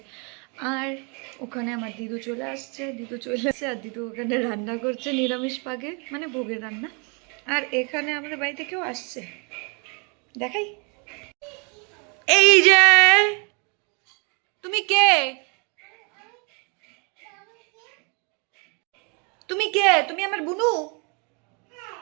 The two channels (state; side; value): quieter; left; 34.2 dB